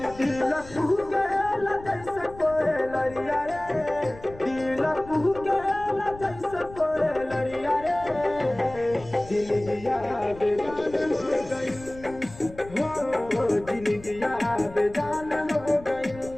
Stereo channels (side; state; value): left; noise; rumble, 18 dB below the sound